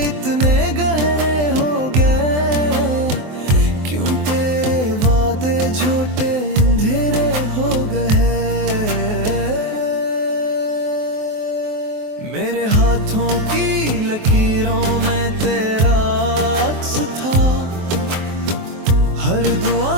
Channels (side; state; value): left; late; 23 ms